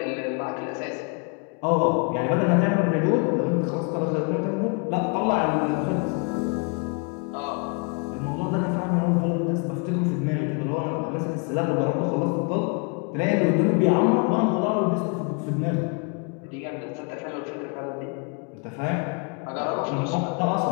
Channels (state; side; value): quieter; right; 34.7 dB